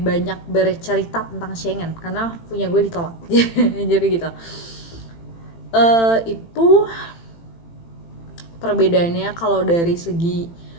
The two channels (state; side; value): late; right; 18 ms